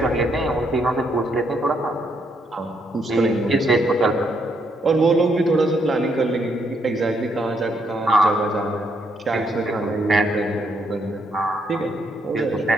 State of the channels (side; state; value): both; normal; correlation 0.74